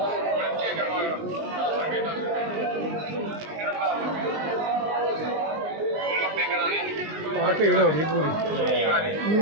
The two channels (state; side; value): late; left; 19 ms